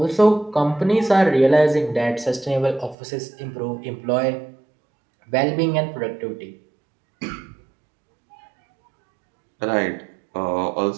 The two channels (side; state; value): left; drops out; at 3.0 s